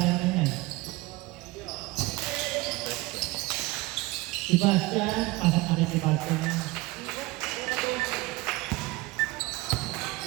naman yan? Sebastian, pasok na rin si Sebastian.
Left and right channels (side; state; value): left; quieter; 21.1 dB